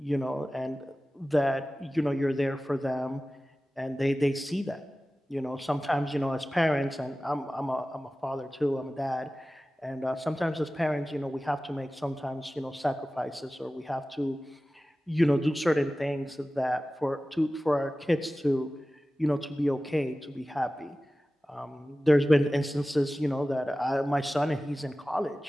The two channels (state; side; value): normal; both; correlation 0.96